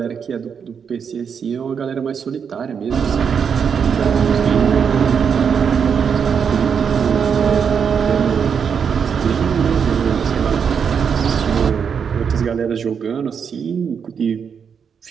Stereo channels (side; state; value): left; quieter; 6.9 dB